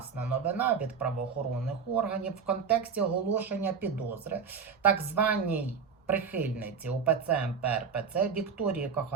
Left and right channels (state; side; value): quieter; left; 6.0 dB